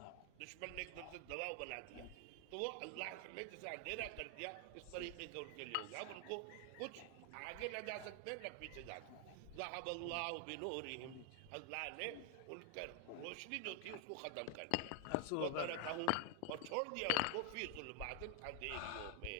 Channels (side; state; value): both; different; correlation 0.00